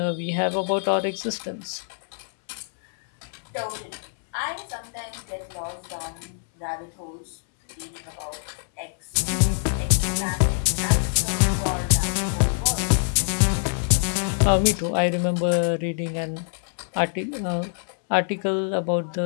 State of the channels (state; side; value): silent; right; 62 dB below the other